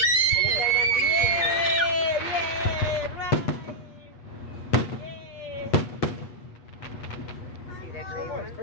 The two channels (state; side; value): late; right; 8.4 ms